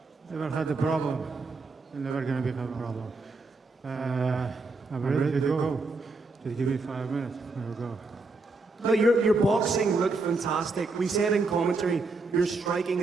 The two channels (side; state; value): left; quieter; 3.6 dB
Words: Never had a problem, and never gonna become a problem. I'm ready to go. Just give me 5 minutes, we'll go. No, your boxing looked fantastic. We said in commentary, your striking